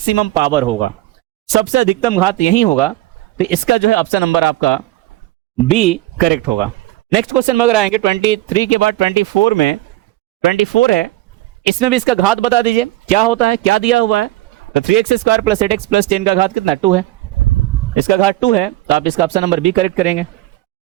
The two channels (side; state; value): left; quieter; 16.6 dB